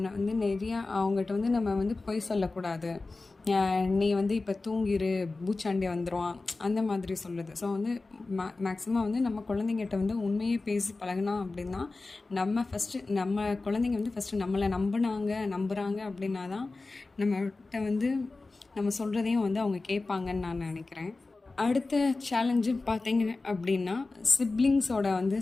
வந்து நிறையா அவங்ககிட்ட வந்து நம்ம வந்து பொய் சொல்லக்கூடாது. நீ வந்து இப்போ தூங்கிரு, பூச்சாண்டி வந்துடுவான், அந்த மாதிரி சொல்லுது. ஸோ வந்து மேக்ஸிமம் வந்து நம்ம குழந்தைங்கிட்ட வந்து உண்மையை பேசி பழகினா அப்படின்னா நம்ம குழந்தைங்க வந்து ஃபஸ்ட்டு நம்மளை நம்புகிறாங்க அப்படின்னா தான் நம்மகிட்ட வந்து நம்ம சொல்கிறதையும் வந்து அவங்க கேட்பாங்கன்னு நான் நினைக்கிறேன். அடுத்த சேலஞ்சு பார்த்தீங்க அப்படின்னா சிப்ளிங்ஸோட வந்து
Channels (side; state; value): right; quieter; 3.5 dB